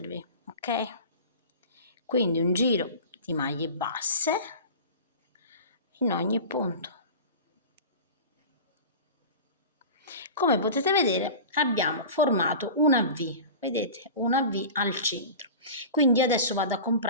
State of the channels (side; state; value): both; inverted; correlation -0.34